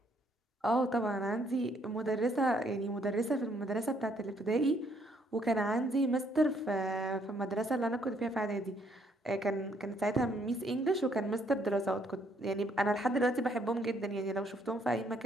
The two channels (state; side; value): normal; both; correlation 0.68